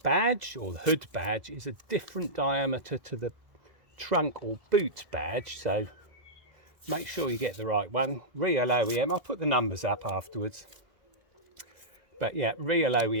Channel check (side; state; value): left; late; 2.0 ms